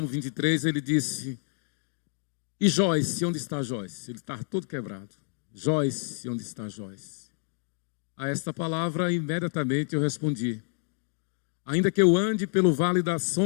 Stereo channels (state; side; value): silent; right; 57 dB below the other